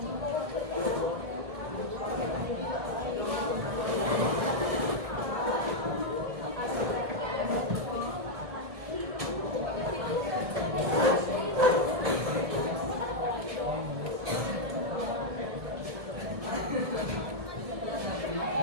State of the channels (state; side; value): late; left; 1.8 ms